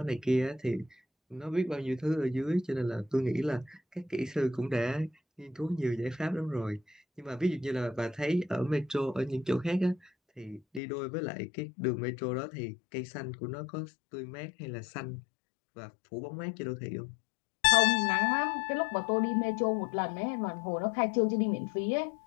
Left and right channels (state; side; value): drops out; right; at 10.8 s